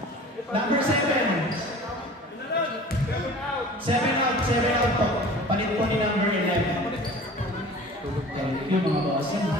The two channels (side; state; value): both; normal; correlation 0.43